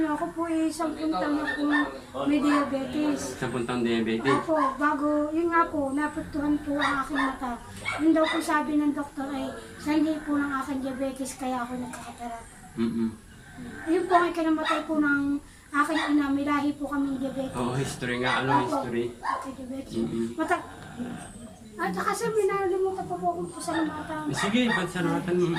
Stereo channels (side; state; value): both; identical; correlation 1.00